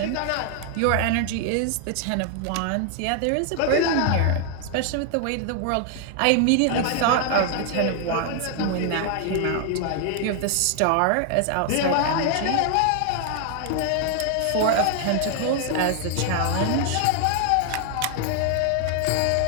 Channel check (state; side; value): different; both; correlation 0.00